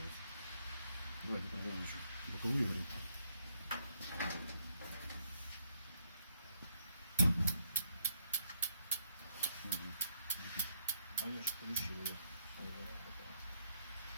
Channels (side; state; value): both; inverted; correlation -0.71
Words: Давайте проверим еще. Боковую говорю. А я же включил ее.